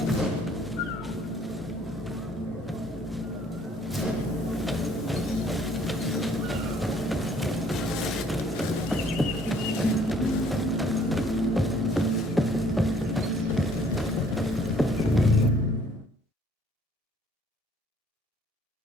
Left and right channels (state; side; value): normal; both; correlation 0.60